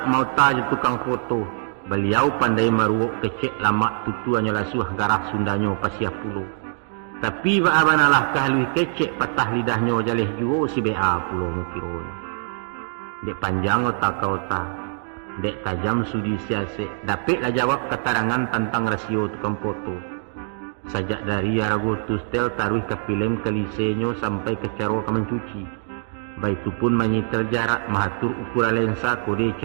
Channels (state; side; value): silent; left; digital silence